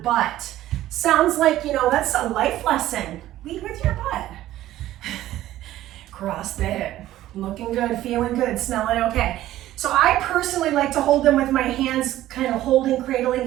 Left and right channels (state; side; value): quieter; left; 14.2 dB